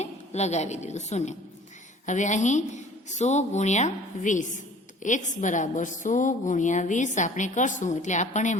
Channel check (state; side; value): normal; both; correlation 0.49